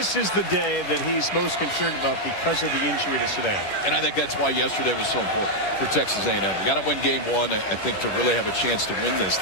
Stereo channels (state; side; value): late; right; 10 ms